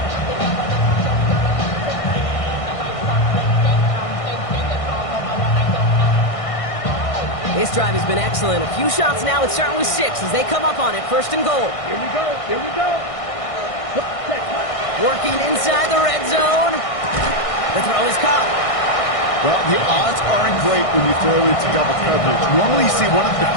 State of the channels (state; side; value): late; right; 1.6 ms